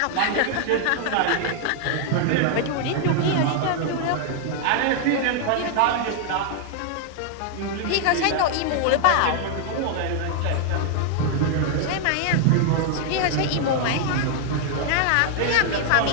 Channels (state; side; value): different; both; correlation 0.00